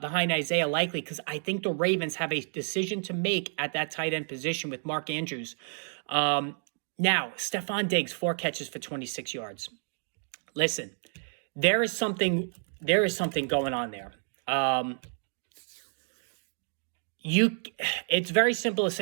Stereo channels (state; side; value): silent; left; 58 dB below the other